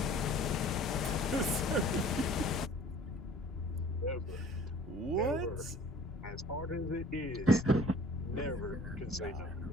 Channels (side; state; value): both; normal; correlation 0.50